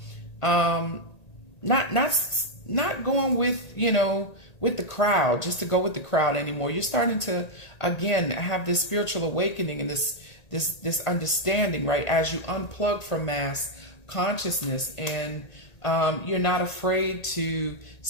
not going with, with the crowd, just to go with the crowd anymore. You're starting to, again, have this spiritual awakening and this understanding, right? As you unplug from mass consciousness and you're not afraid to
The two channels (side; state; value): right; late; 1.8 ms